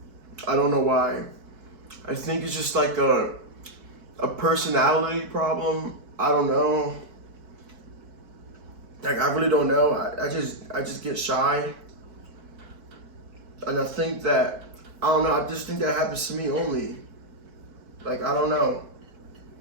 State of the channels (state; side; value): late; left; 4.6 ms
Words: I don't know why. I think it's just like a personality problem. I don't know. Like I really don't know. I just get shy, and I think that I don't know. I just think that happens to me only. Like I don't know,